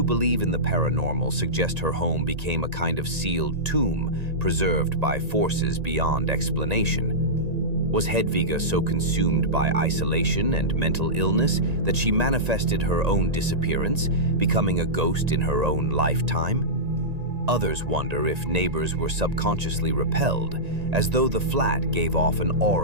believe in the paranormal suggest her home became a kind of sealed tomb, preserved by forces beyond explanation. Was Hedviga so consumed by isolation and mental illness that she manifested her own disappearance, becoming a ghost in her own lifetime? Others wonder if neighbors were subconsciously repelled, as though the flat gave off an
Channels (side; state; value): left; late; 1.9 ms